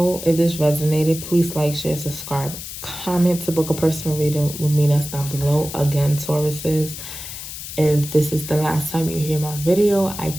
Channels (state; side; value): noise; left; hiss, 10 dB below the sound